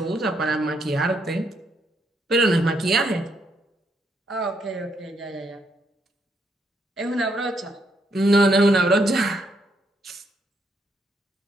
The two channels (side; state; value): both; normal; correlation 0.75